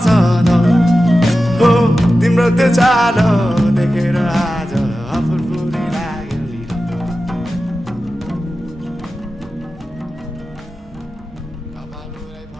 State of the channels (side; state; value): both; normal; correlation 0.93